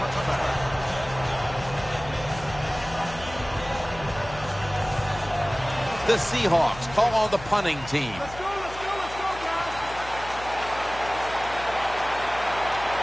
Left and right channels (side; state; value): left; noise; hum, 15 dB below the sound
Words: The Seahawks call on the punting team. Let's go, guys.